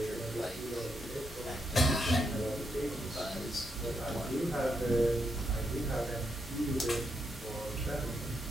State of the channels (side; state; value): both; normal; correlation 0.80